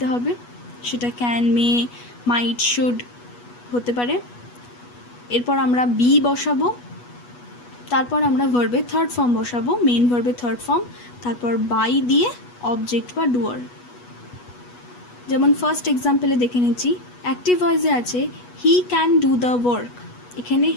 হবে, সেটা ক্যান, মে, মাইট, শুড হতে পারে। এরপর আমরা বি বসাবো, তারপর আমরা ভার্বের থার্ড ফর্ম বসাবো, মেইন ভার্বের থার্ড ফর্ম, তারপর বাই দিয়ে অবজেক্ট বা ডুয়ার। যেমন ফার্স্ট এক্সাম্পলে দেখে নিচ্ছি, অ্যাক্টিভ ভয়েসে আছে he can do the work, এখানে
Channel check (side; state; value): right; late; 8.2 ms